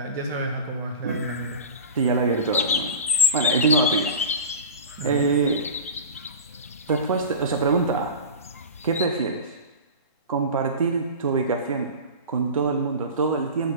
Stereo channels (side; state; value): both; inverted; correlation -0.30